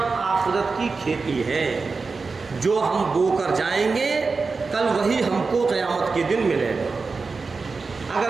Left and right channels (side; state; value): left; quieter; 4.4 dB